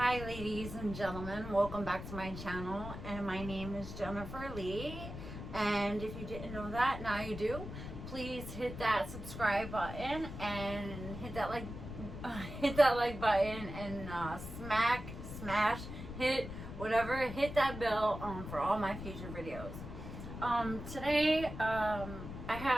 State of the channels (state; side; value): noise; left; rumble, 9 dB below the sound